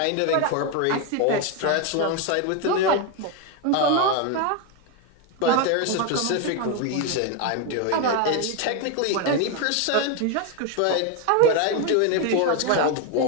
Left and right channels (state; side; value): different; both; correlation 0.02